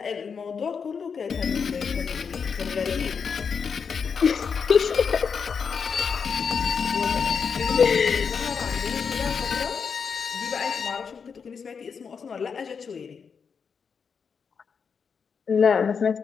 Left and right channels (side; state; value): right; quieter; 6.1 dB